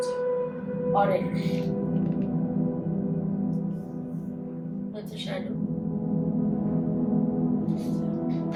Already. That's a shadow.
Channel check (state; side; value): identical; both; correlation 1.00